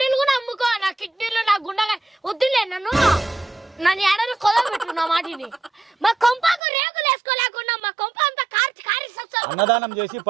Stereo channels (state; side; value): drops out; left; at 6.6 s